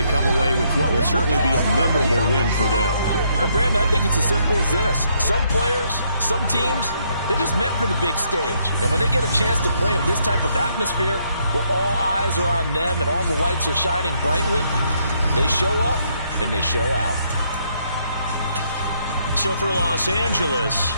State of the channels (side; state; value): both; inverted; correlation -0.72